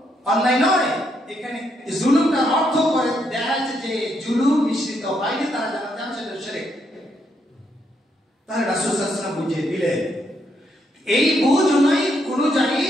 অন্যায় নয়। এখানে জুলুমটার অর্থ করে দেখা যাচ্ছে যে জুলুম মিশ্রিত হয়নি, তারা জান্নাতে যাবে, সেটা শিরক। তাহলে রাসূল সাল্লাল্লাহু আলাইহি ওয়াসাল্লাম বুঝিয়ে দিলেন। এই বুঝ অনুযায়ী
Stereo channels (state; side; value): normal; both; correlation 0.77